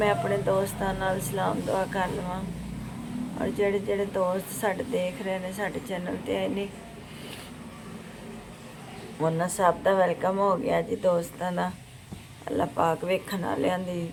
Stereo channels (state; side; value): identical; both; correlation 1.00